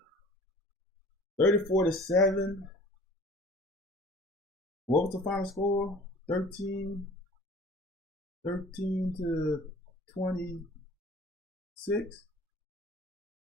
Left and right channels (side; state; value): both; normal; correlation 0.47